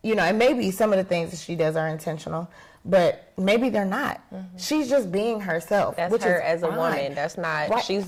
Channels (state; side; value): identical; both; correlation 1.00